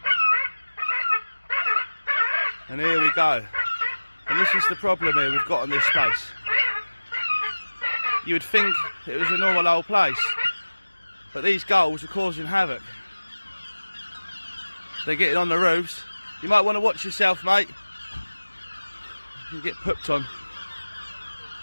And here we go. And this is the problem here we've got in this space. You would think it was a normal old place, but these gulls are causing havoc. They're getting on the roofs. You might want to watch yourself, mate. You get pooped on.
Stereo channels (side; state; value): both; inverted; correlation -1.00